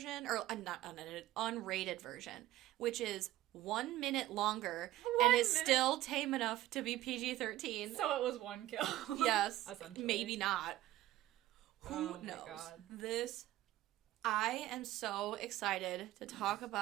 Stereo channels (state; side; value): quieter; left; 15.2 dB